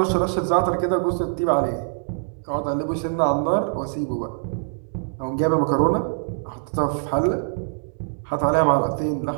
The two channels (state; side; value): silent; left; digital silence